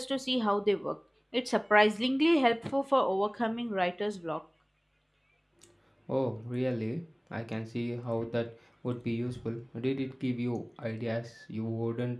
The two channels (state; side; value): identical; both; correlation 1.00